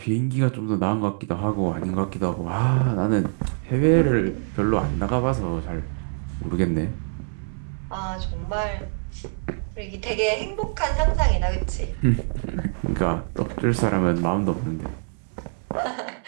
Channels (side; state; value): left; silent; 60 dB below the other